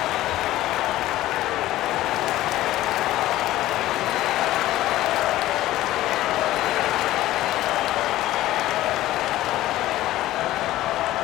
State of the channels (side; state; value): right; quieter; 15.4 dB